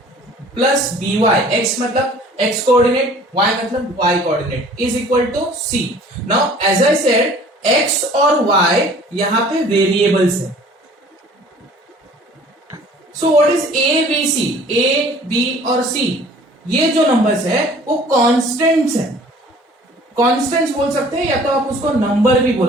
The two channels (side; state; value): both; normal; correlation 0.50